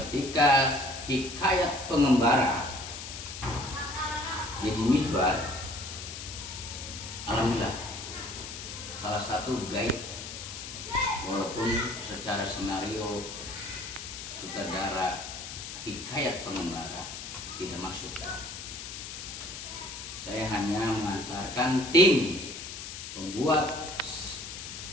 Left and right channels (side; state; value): left; noise; hiss, 9 dB below the sound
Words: Hikayat Pengembara Deddy Mizwar, alhamdulillah salah satu guide, walaupun secara skenario sutradara Hikayat Pengembara tidak masuk. Saya hanya mengantarkan tim pembuat